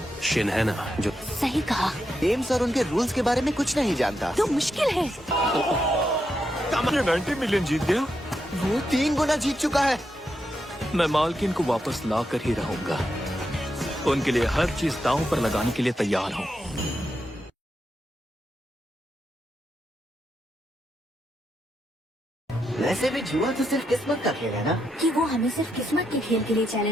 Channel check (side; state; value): both; normal; correlation 0.83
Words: शिन है ना जो। सही कहा। गेम्स और उनके रूल्स के बारे में कुछ नहीं जानता। तो मुश्किल है। 90 मिलियन जीत गया। वो 3 गुना जीत चुका है। मैं मालकिन को वापस ला कर ही रहूंगा। उनके लिए हर चीज दांव पर लगाने के लिए तैयार हूँ। वैसे भी जुआ तो सिर्फ किस्मत का खेल है ना? कि वो हमें सिर्फ किस्मत के खेल के लिए